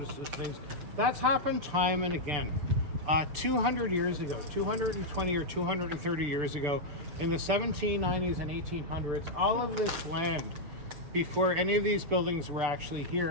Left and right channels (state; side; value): late; left; 6.8 ms